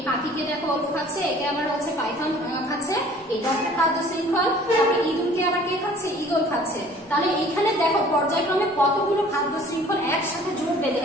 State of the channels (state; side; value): normal; both; correlation 0.51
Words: পাখিকে দেখো ওল খাচ্ছে, একে আবার হচ্ছে পাইথন খাচ্ছে, এটা একটা খাদ্য শৃঙ্খল। তারপরে ইঁদুরকে আবার কে খাচ্ছে, ঈগল খাচ্ছে। তাহলে এখানে দেখো পর্যায়ক্রমে কতগুলো খাদ্য শৃঙ্খল একসাথে জোট বেঁধে